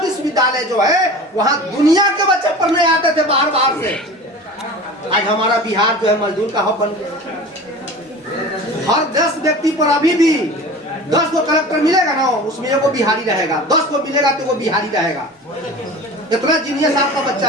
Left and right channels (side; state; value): both; normal; correlation 0.36